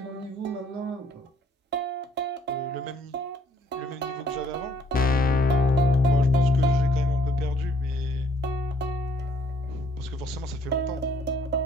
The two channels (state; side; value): normal; both; correlation 0.64